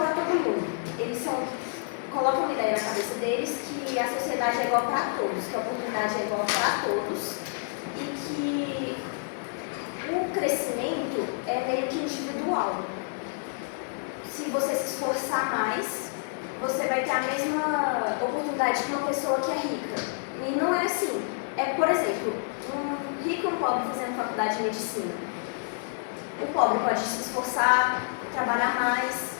todo mundo. Eles colocam uma ideia na cabeça deles que a sociedade é igual para todos, que a oportunidade é igual para todos e que o crescimento é meio que individual. Se você se esforçar mais, você vai ter a mesma oportunidade que uma pessoa que é rica. E não é assim. Por exemplo, um rico e um pobre fazendo faculdade de medicina. O pobre pode se esforçar, trabalhar mais,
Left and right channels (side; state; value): right; silent; 56 dB below the other